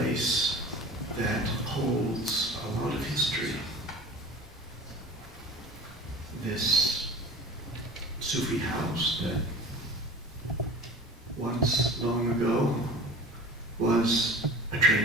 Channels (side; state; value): both; normal; correlation 0.38